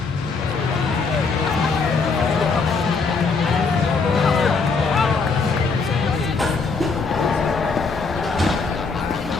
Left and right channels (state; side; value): quieter; right; 4.5 dB